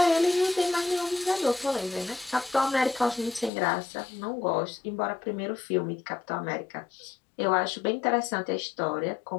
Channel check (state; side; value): drops out; right; at 3.5 s